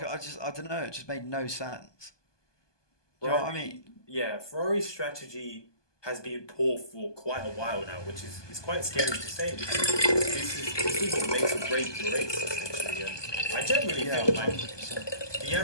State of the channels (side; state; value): right; late; 1.2 ms